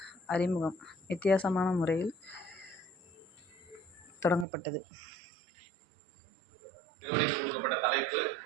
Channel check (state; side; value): drops out; left; at 4.5 s